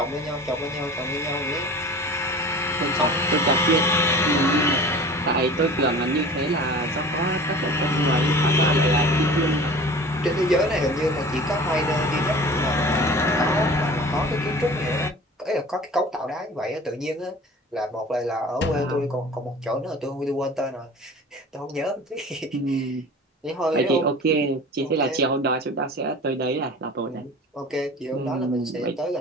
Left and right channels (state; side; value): normal; both; correlation 0.40